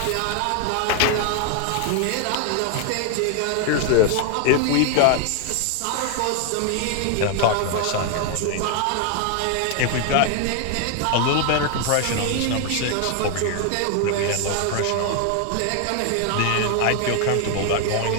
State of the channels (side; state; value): both; different; correlation 0.00